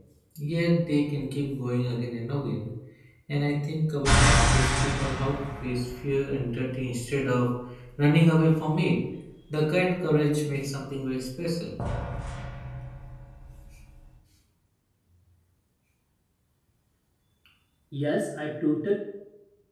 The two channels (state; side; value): identical; both; correlation 1.00